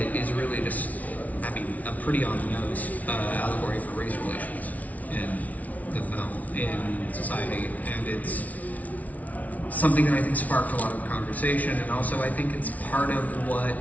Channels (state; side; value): late; right; 0.072 ms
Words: is really just, I mean, a pretty on-the-nose allegory for race relations in the film, in society, and it's something that I think sparked a lot of conversation, and also I think it's part of what